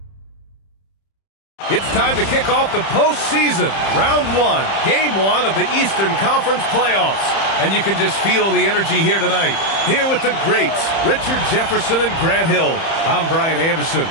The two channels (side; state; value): right; late; 30 ms